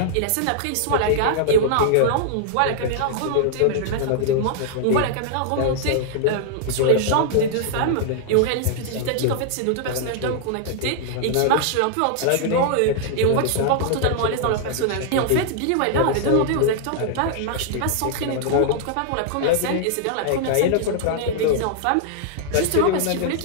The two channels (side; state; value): both; different; correlation -0.01